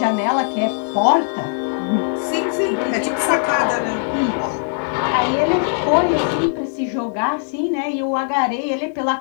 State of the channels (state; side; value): silent; right; 66 dB below the other